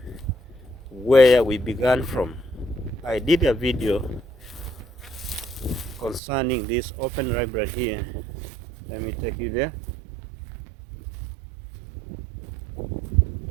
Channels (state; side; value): drops out; left; at 6.2 s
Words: where we began from. I did a video concerning this open library here. Let me take you there.